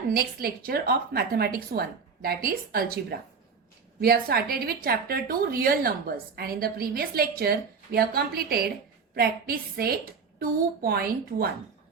next lecture of Mathematics 1, that is Algebra. We have started with chapter 2 real numbers, and in the previous lecture we have completed practice set 2.1.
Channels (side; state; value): left; quieter; 5.4 dB